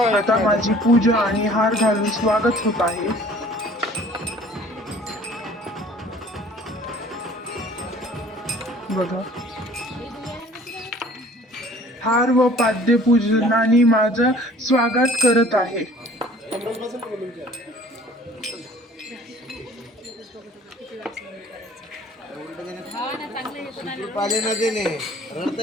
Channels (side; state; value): both; normal; correlation 0.52